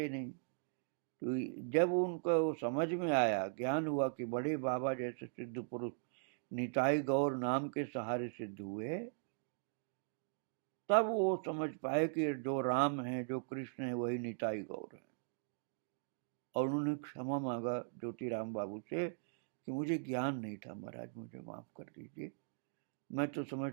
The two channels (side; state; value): left; silent; digital silence